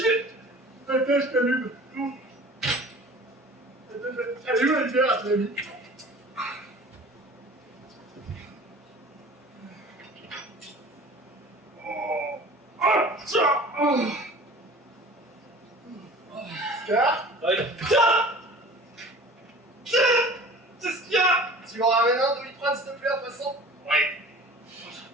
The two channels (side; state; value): both; normal; correlation 0.43